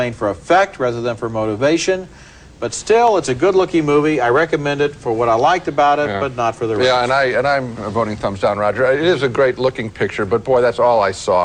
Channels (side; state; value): both; identical; correlation 1.00